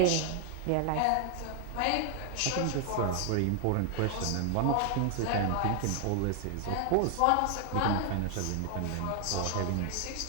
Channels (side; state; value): both; different; correlation 0.00